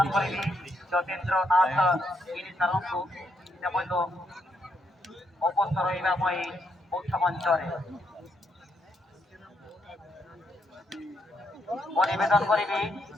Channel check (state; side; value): normal; both; correlation 0.77